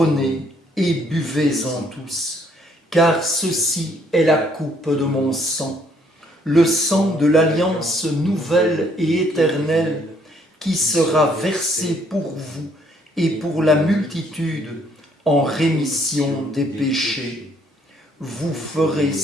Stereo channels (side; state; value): both; normal; correlation 0.66